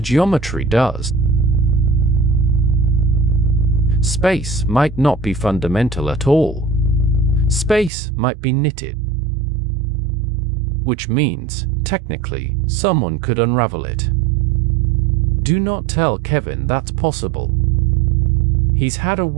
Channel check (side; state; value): left; drops out; at 7.9 s